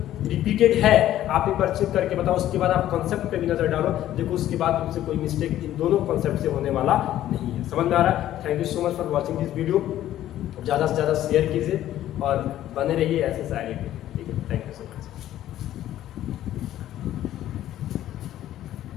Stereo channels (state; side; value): quieter; right; 12.8 dB